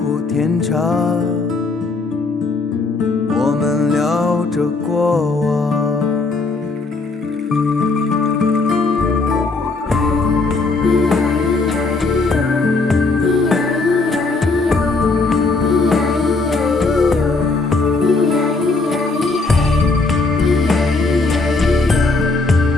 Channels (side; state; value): right; quieter; 3.6 dB